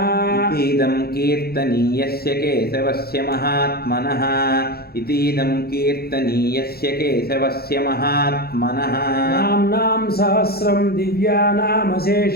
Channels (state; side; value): late; right; 0.45 ms